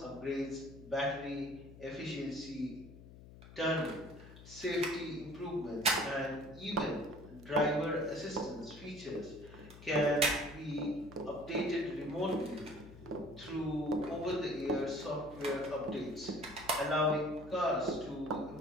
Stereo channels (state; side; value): noise; left; hum, 17 dB below the sound